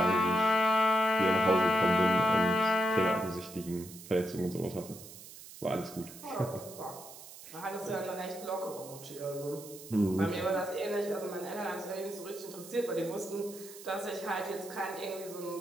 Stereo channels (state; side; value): noise; right; hiss, 16 dB below the sound